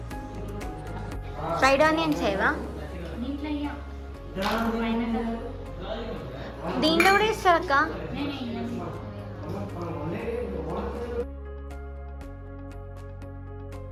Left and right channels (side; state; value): both; identical; correlation 1.00